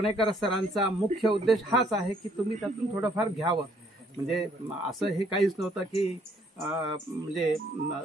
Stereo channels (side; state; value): both; normal; correlation 0.65